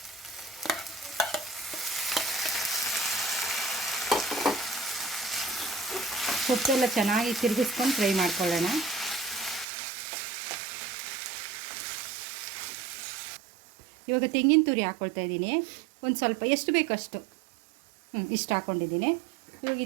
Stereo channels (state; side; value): drops out; left; at 9.7 s